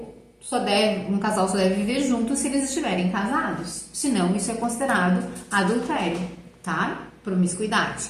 casal só deve viver junto se eles estiverem casados. Senão, isso é considerado adultério, tá? Promiscuidade.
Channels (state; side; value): identical; both; correlation 1.00